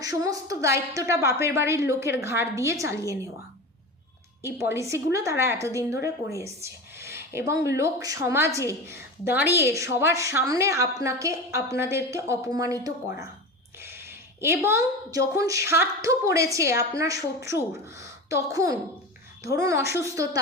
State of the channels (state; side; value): normal; both; correlation 0.27